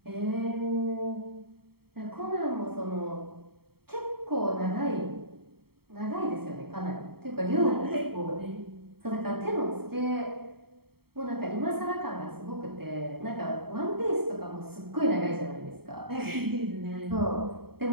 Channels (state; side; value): late; left; 0.95 ms